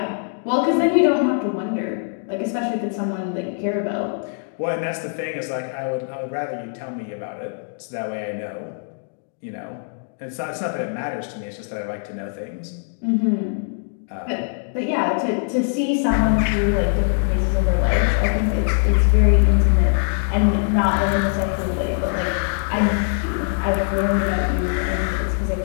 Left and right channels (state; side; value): silent; right; 63 dB below the other